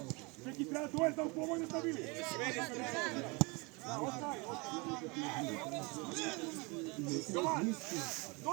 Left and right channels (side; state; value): left; quieter; 28.0 dB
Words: Čeki, treba to je da u pomojno stavili. Jovan!